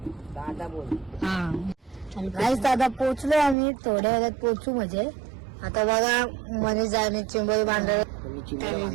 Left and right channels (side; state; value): left; drops out; at 3.6 s